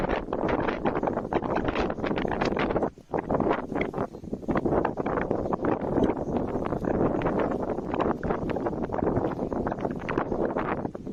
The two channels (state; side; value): identical; both; correlation 1.00